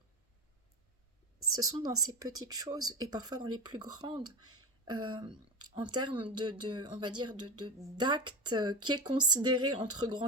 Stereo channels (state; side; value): normal; both; correlation 0.22